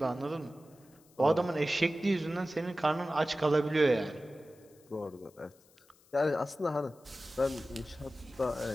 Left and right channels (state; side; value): noise; left; hiss, 30 dB below the sound